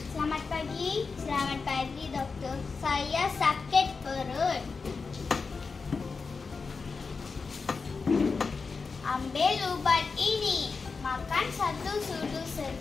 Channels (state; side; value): quieter; right; 4.7 dB